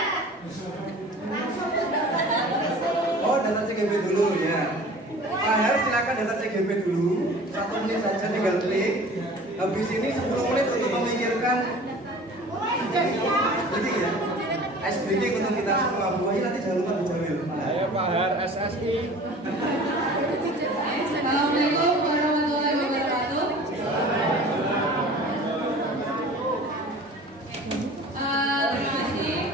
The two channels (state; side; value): normal; both; correlation 0.43